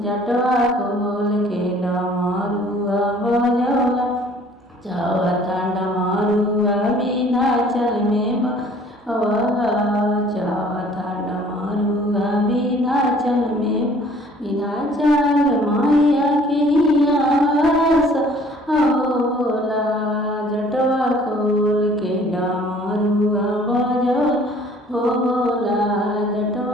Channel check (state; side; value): normal; both; correlation 0.55